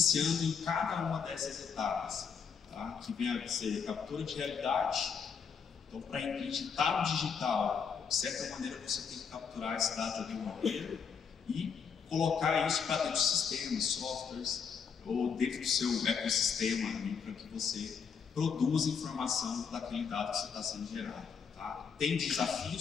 em cada uma dessas etapas, tá? Que vem a ser captura de realidade. Então, para acreditar no digital, de certa maneira você tem que capturar esse dado de alguma maneira e colocar isso para dentro dos sistemas, softwares, ou dentro do seu ecossistema, para que você produza informação daquele dado que está sendo gerado. Tá? Tem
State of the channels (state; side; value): quieter; right; 6.4 dB